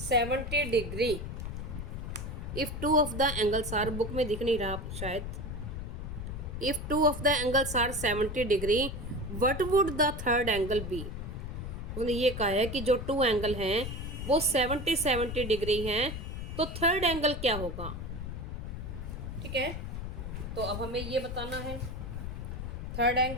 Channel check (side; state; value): left; noise; rumble, 6 dB below the sound